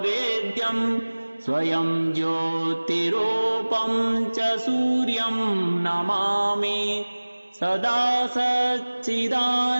स्वयं ज्योतिरूपं च सूर्यं नमामि सदा सच्चिदानन्दमेकं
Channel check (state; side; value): inverted; both; correlation -1.00